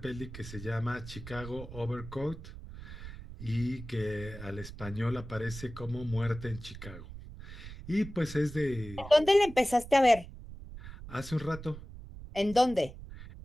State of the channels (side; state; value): right; noise; rumble, 13 dB below the sound